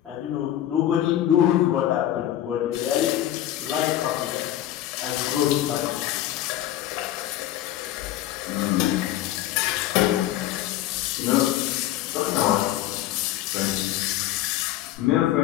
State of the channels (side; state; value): right; quieter; 13.0 dB